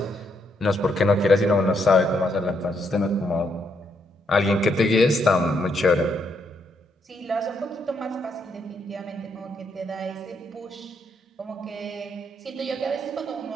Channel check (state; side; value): normal; both; correlation 0.76